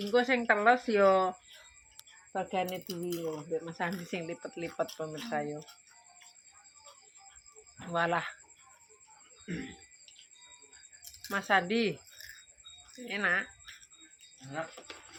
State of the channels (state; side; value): identical; both; correlation 1.00